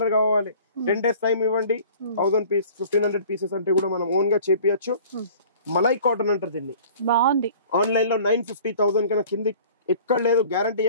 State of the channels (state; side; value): inverted; both; correlation -0.48